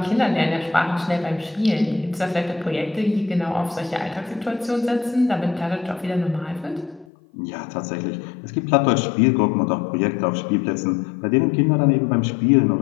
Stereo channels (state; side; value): drops out; right; at 7.1 s